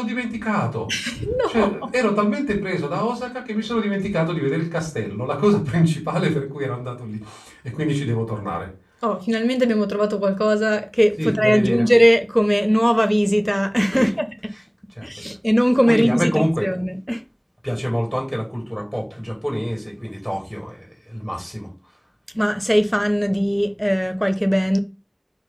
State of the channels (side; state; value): both; identical; correlation 1.00